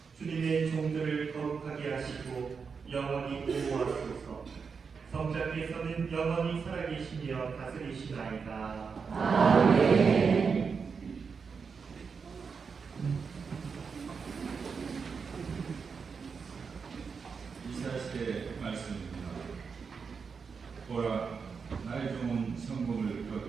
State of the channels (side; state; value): left; quieter; 5.6 dB